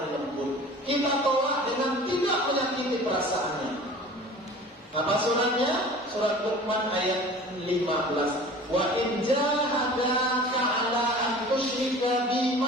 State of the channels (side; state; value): both; normal; correlation 0.42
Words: lembut. Kita tolak dengan tidak menyakiti perasaannya. Apa suratnya? Surat Luqman ayat 15. Wa in jahadaka 'ala an tusyrika